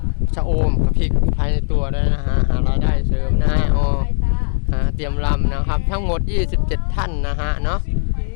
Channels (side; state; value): right; silent; 67 dB below the other